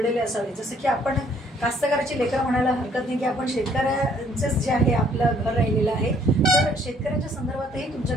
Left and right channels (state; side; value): normal; both; correlation 0.63